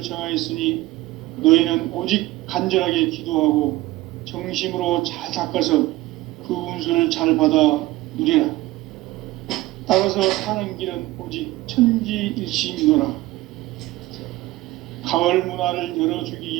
정하였으니 너희는 오직 간절하게 기도하고 정심으로 잘 닦아서 그 운수를 잘 받아 누리라. 따라서 사는 길은 오직 천지일심이노라. 가을 문화를 열어주기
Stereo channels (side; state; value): left; quieter; 18.1 dB